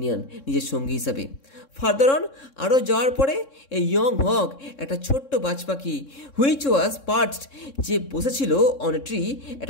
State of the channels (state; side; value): late; right; 3.6 ms